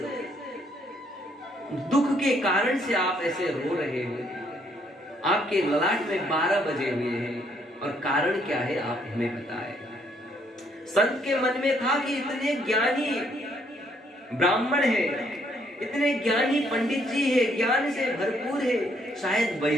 दुख के कारण से आप ऐसे रो रहे हो? आपके ललाट में 12 बजे हुए हैं और कारण क्या है आप हमें बताएं। संत के मन में था कि इतने ज्ञानी ब्राह्मण है, इतने ज्ञानी पंडित जी है, ज्ञान से भरपूर है, शायद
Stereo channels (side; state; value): both; normal; correlation 0.69